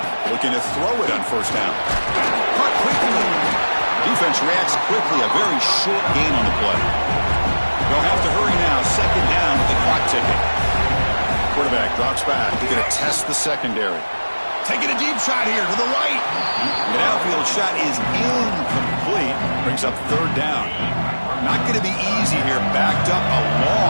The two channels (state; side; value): inverted; both; correlation -1.00